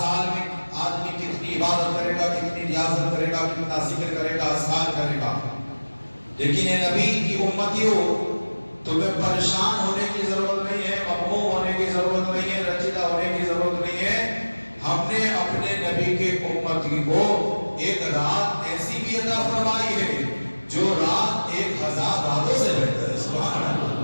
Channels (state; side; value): inverted; both; correlation -1.00